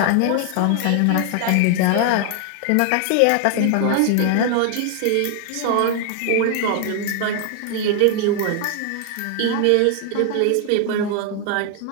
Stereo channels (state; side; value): different; both; correlation 0.00